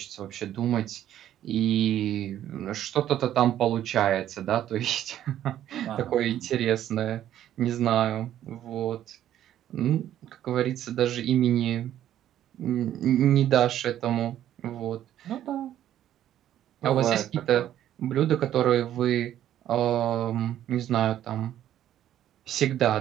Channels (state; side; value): quieter; left; 11.6 dB